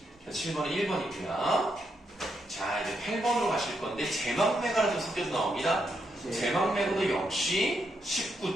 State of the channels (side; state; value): both; normal; correlation 0.80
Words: 7번은 1번이고요. 자, 이제 8번으로 가실 건데 제막매가가 좀 섞여서 나옵니다. 제막매가도 역시